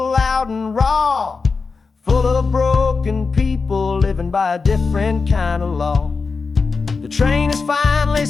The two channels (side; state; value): right; quieter; 4.6 dB